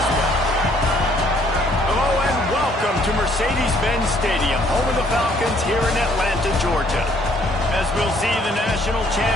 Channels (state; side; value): normal; both; correlation 0.63